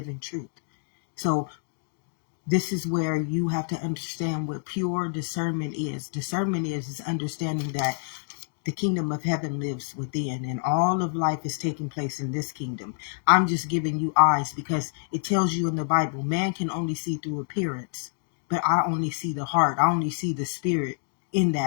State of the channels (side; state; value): right; silent; 60 dB below the other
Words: truth. So this is where you have to understand what pure discernment is. Discernment is understanding that the kingdom of heaven lives within, and all of life is taking place in this kingdom. I'm just giving you eyes because it tells you in the Bible, man can only see through appearance, but I only see the heart. I only see the spirit in